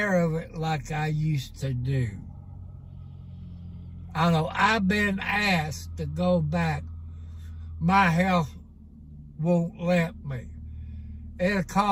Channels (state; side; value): identical; both; correlation 1.00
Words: of it like I used to do. I know I've been asked to go back. My health won't let me. It'll